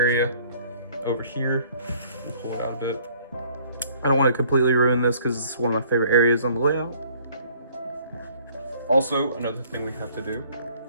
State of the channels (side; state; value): both; inverted; correlation -0.58